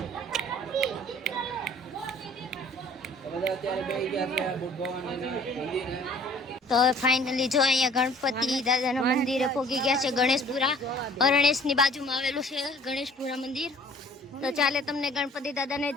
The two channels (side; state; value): both; normal; correlation 0.52